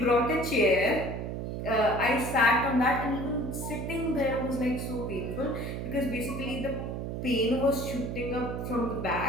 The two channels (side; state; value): right; noise; hum, 4 dB below the sound